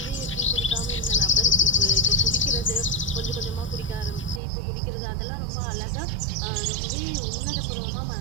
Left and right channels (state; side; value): drops out; left; at 4.4 s